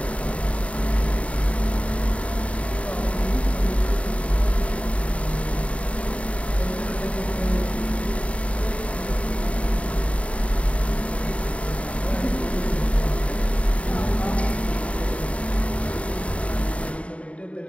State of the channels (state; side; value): late; right; 0.064 ms